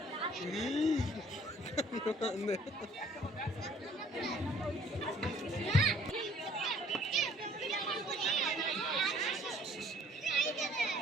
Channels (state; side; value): normal; both; correlation 0.57